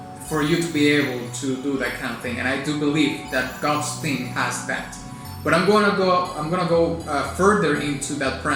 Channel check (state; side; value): identical; both; correlation 1.00